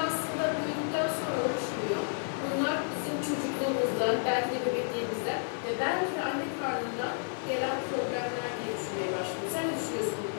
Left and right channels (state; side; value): silent; right; digital silence